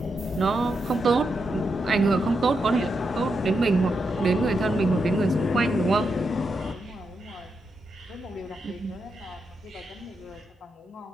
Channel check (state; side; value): normal; both; correlation 0.84